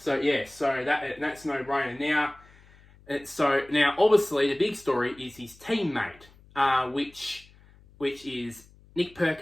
no-brainer. Now, So now, obviously, the big story is his teammate, which is Nick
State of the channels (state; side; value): noise; left; hum, 26 dB below the sound